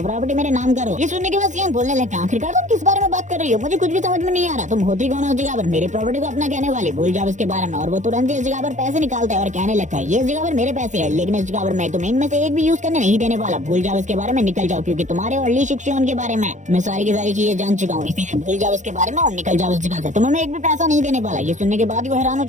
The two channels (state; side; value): late; left; 0.35 ms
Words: प्रॉपर्टी मेरे नाम करो। ये सुनने के बाद जियांग बोलने लगता है आखिरकार तुम किस बारे में बात कर रही हो, मुझे कुछ भी समझ में नहीं आ रहा, तुम होती कौन हो उस जगह पर, मेरी प्रॉपर्टी को अपना कहने वाली, भूल जाओ इसके बारे में। और वो तुरंत इस जगह पर पैसे निकालता है और कहने लगता है ये इस जगह पर मेरे पैसे है, लेकिन इस जगह पर मैं तुम्हें इनमें से एक भी यूज करने नहीं देने वाला, भूल जाओ इसके बारे में, निकल जाओ, क्योंकि तुम्हारे और ली शिक्षण के बारे में मैं सारी की सारी चीजें जान चुका हूँ, इसीलिए भूल जाओ इसके बारे में और निकल जाओ इस जगह से, तुम्हें मैं एक भी पैसा नहीं देने वाला। ये सुनने के बाद वो हैरान हो